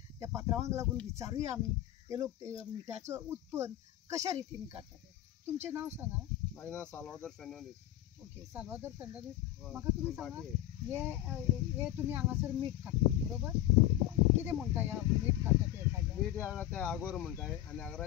त्या पात्रांवांक लागून विचारूय आमी ते लोक मिठाचो उत्पन्न कशा रितीन काडटात. तुमचें नांव सांगा. माझें नांव साल्वादोर फेर्नांदीस. ओके, साल्वादोर फेर्नांदीस. म्हाका तुमी सांगा, हे तुमी हांगासर मीठ काडटा बरोबर, कितें म्हणटा ह्या मीठ काडटा ते? मीठ हांगा ते आगोर म्हणटाय आनी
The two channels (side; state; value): right; quieter; 13.8 dB